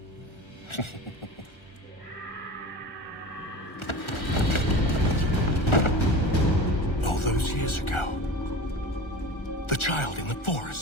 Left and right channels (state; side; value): late; right; 1.4 ms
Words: All those years ago, The child in the